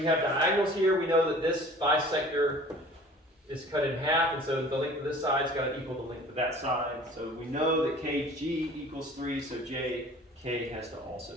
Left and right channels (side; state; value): both; normal; correlation 0.47